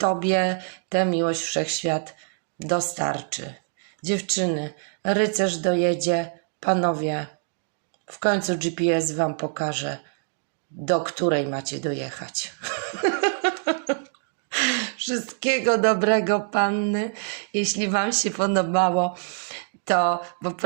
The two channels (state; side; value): silent; left; 62 dB below the other